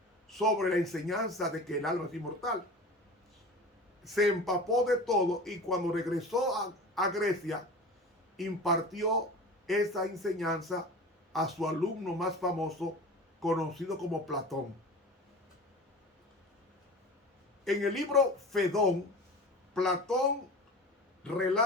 sobre la enseñanza de que el alma es inmortal. Se empapó de todo y cuando regresó a Grecia, impartió esa enseñanza a su alumno más famoso, conocido como Platón. En el libro Fedón, Platón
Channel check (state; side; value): normal; both; correlation 0.35